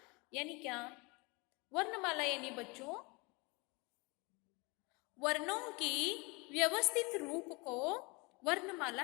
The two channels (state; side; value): quieter; right; 27.5 dB